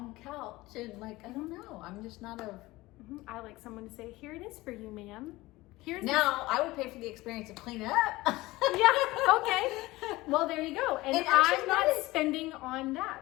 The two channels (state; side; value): quieter; right; 19.5 dB